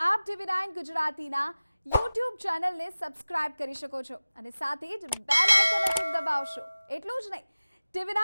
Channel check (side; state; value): both; inverted; correlation -0.98